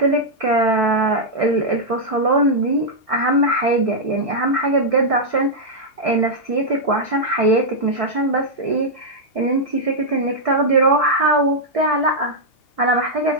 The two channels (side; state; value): right; late; 2.8 ms